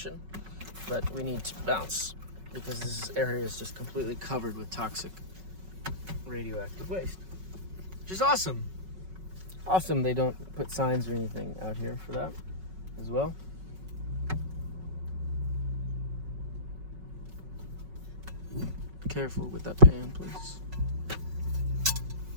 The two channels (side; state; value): left; late; 5.4 ms